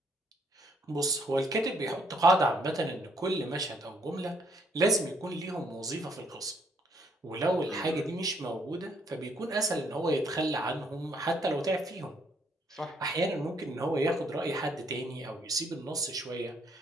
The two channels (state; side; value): normal; both; correlation 0.68